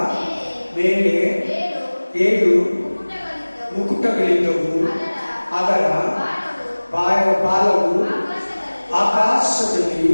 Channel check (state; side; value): inverted; both; correlation -1.00